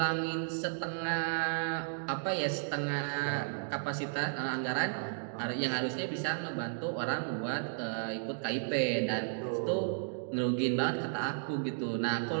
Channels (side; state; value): left; silent; digital silence